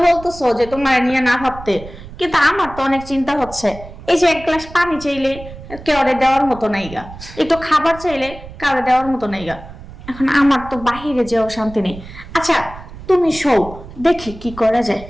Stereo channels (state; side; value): noise; right; rumble, 15 dB below the sound